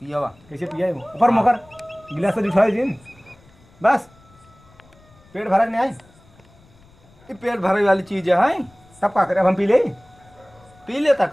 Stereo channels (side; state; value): left; noise; rumble, 28 dB below the sound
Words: कैसे पिया ऊपर मकर गिलास से उठाए जिन बस पेट भरा नहीं आए ये पेट भरे वाली चीज है तब का करे अब हम पी लेता